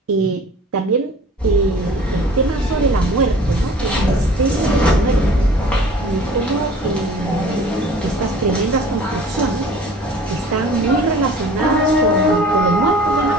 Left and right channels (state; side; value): normal; both; correlation 0.46